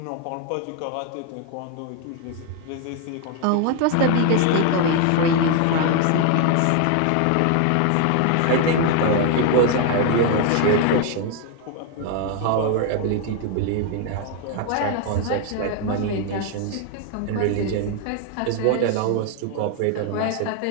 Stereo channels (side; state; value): both; different; correlation 0.01